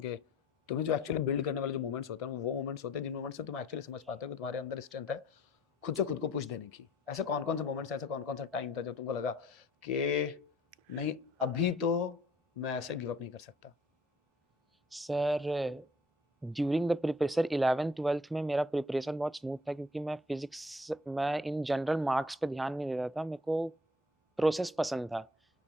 कि तुम्हें जो एक्चुअली बिल्ड करने वाले जो मोमेंट्स होते हैं वो मोमेंट्स होते हैं जिन मोमेंट्स से तुम एक्चुअली समझ पाते हो कि तुम्हारे अंदर स्ट्रेंथ है खुद से खुद को पुश देने की। ऐसे कौन कौन से मोमेंट्स, ऐसे कौन कौन सा टाइम था जब तुमको लगा कि नहीं अभी तो मैं ऐसे गिव अप नहीं कर सकता? Sir during the preparation 11th-12th में मेरा प्रिपरेशन बहुत स्मूथ था क्योंकि मैं इन जनरल मार्क्स पे ध्यान नहीं देता था। मेरे को प्रोसेस पसंद था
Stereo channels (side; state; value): both; normal; correlation 0.58